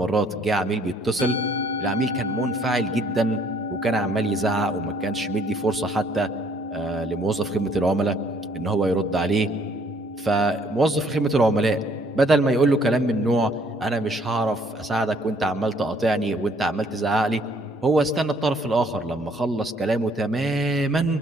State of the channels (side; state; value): both; normal; correlation 0.62